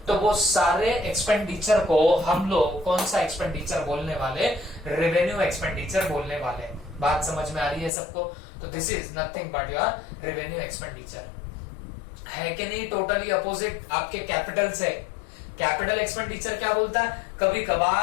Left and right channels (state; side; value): drops out; right; at 7.9 s